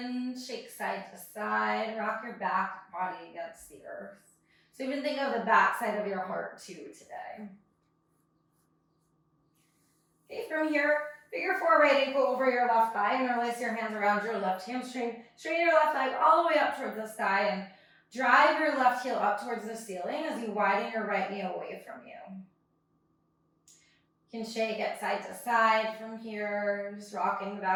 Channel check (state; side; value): identical; both; correlation 1.00